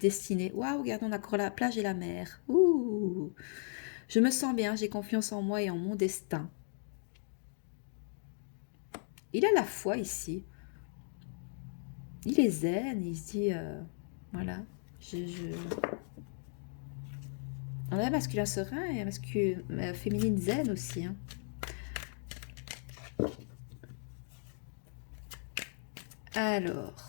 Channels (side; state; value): right; silent; 53 dB below the other